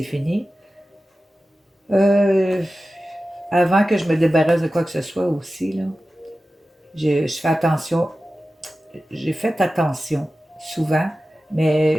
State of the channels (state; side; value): normal; both; correlation 0.94